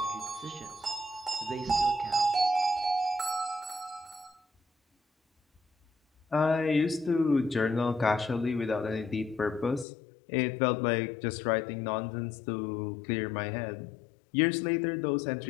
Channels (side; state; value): right; drops out; at 9.9 s